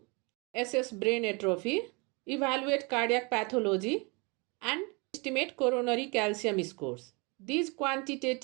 assess brain atrophy, evaluate cardiac pathology, and estimate coronary calcium scores. These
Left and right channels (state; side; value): quieter; left; 29.7 dB